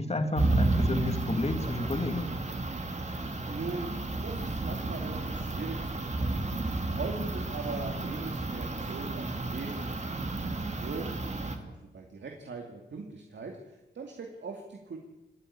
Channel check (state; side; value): normal; both; correlation 0.74